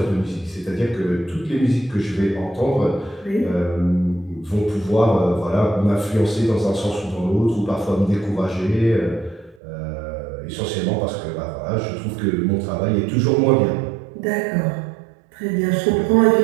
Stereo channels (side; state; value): left; drops out; at 9.6 s